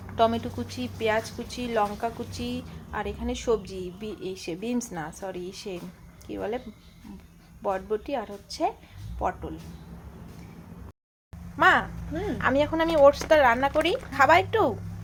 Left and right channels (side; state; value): both; identical; correlation 1.00